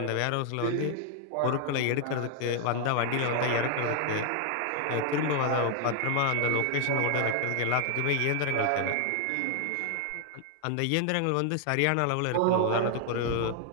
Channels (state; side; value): different; both; correlation 0.00